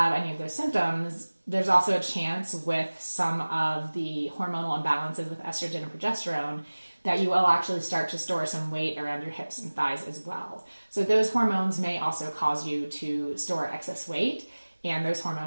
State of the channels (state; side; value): inverted; both; correlation -1.00